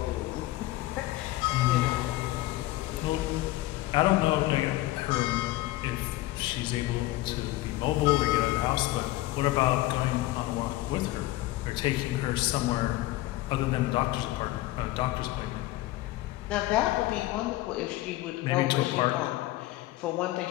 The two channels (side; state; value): right; quieter; 17.5 dB